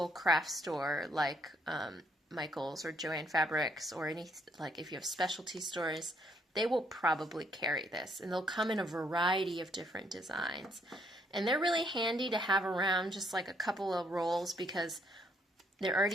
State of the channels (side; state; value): both; normal; correlation 0.70